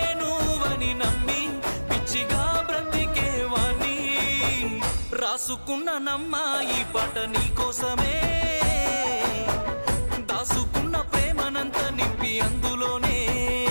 నువ్వని నమ్మి పిచ్చిగా బ్రతికేవాణ్ణి. రాసుకున్న నమ్మ ఈ పాట నీకోసమే, దాసుకున్న ప్రేమనంత నింపి అందులోనే,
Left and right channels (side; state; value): both; inverted; correlation -1.00